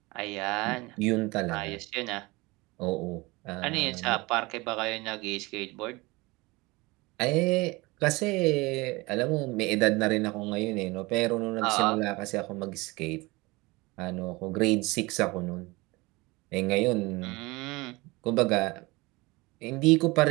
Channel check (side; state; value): left; quieter; 23.3 dB